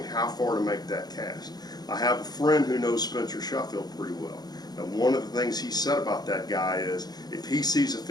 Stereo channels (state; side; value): late; right; 0.19 ms